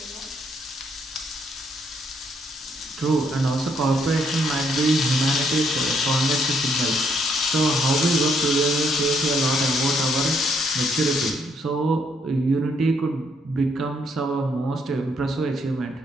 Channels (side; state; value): both; normal; correlation 0.71